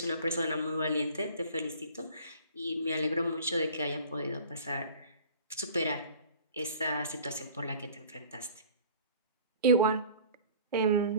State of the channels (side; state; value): both; inverted; correlation -0.46